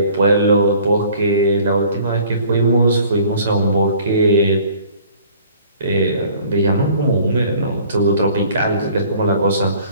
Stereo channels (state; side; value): inverted; both; correlation -0.53